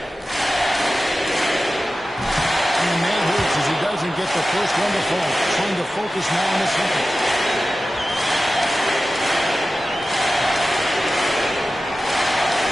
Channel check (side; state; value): both; normal; correlation 0.94